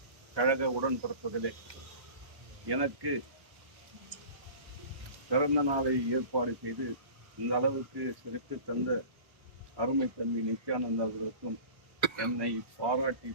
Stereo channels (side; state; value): left; late; 1.3 ms